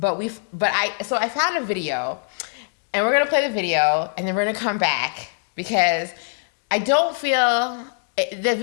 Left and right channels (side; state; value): right; silent; 64 dB below the other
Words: a video, and we're going to play the video, and then we're going to come back because I don't feel the